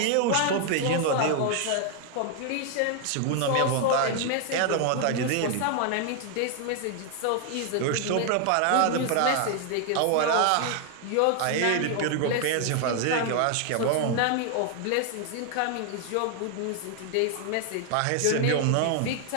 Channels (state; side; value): different; both; correlation 0.00